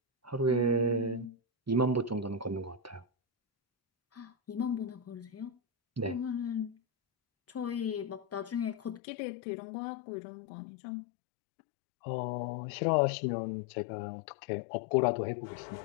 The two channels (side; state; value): right; drops out; at 9.0 s